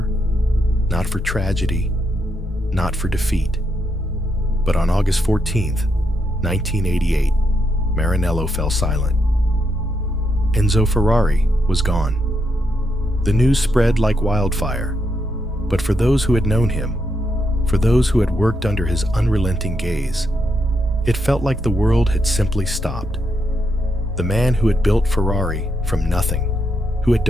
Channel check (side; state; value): both; normal; correlation 0.81